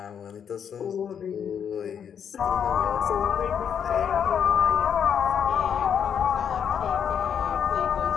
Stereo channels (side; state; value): right; quieter; 8.0 dB